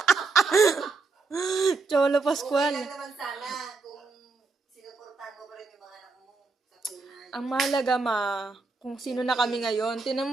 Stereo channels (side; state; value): left; quieter; 4.0 dB